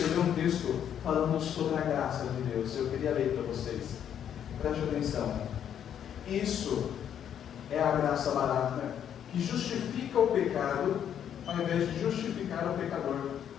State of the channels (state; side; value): quieter; right; 9.3 dB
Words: um texto falando sobre a graça de Deus. Eu queria ler para vocês. Preste atenção. Isso é a graça barata, que justifica o pecado, ao invés de justificar o pecador.